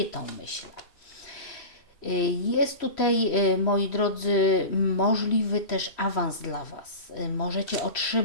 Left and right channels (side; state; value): right; late; 3.1 ms